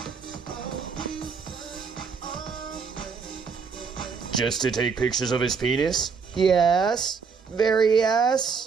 Just to take pictures of his penis? Yes. Very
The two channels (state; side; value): quieter; left; 5.5 dB